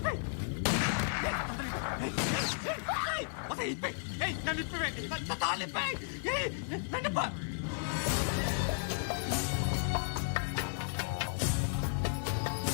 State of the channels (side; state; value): right; silent; 55 dB below the other